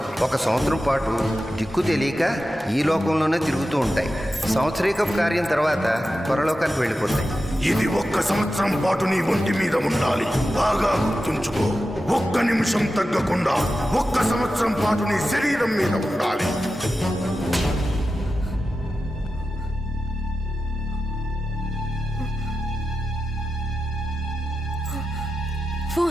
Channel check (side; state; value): both; normal; correlation 0.92